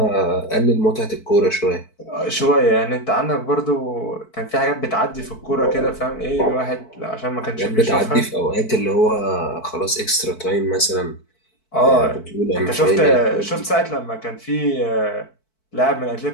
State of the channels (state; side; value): late; right; 4.5 ms